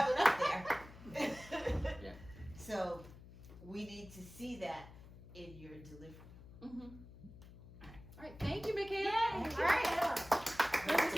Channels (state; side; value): noise; left; hum, 18 dB below the sound